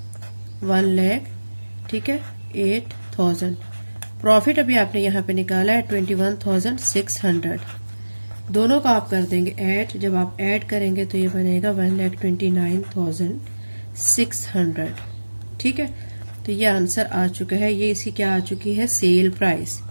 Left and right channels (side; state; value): both; inverted; correlation -1.00